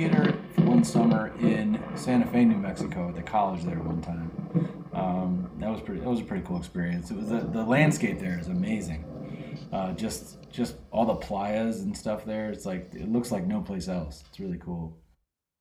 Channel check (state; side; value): identical; both; correlation 1.00